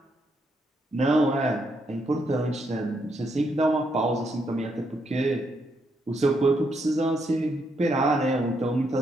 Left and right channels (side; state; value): both; normal; correlation 0.77